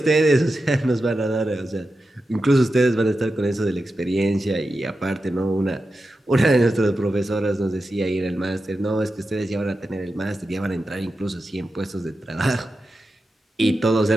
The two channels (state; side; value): normal; both; correlation 0.91